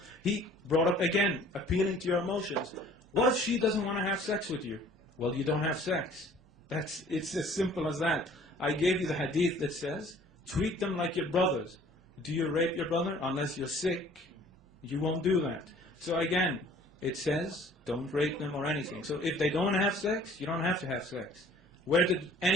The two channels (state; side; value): normal; both; correlation 0.52